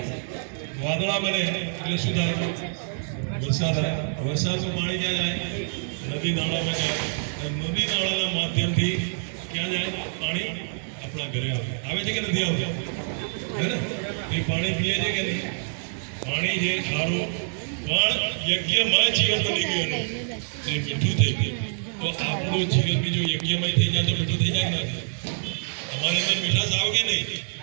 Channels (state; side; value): silent; left; 61 dB below the other